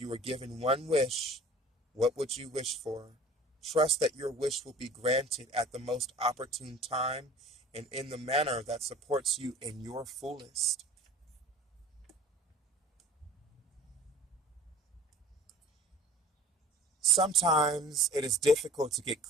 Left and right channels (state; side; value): normal; both; correlation 0.45